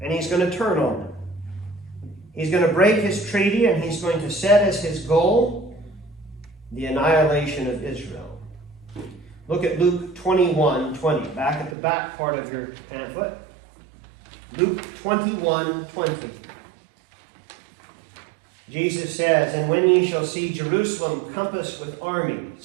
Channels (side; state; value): left; drops out; at 11.8 s